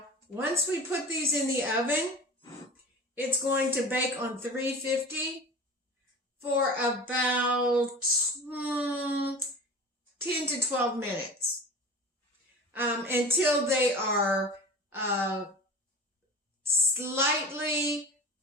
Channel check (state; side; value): normal; both; correlation 0.37